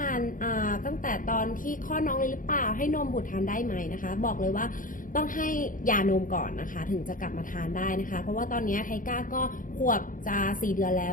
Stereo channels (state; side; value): late; right; 0.39 ms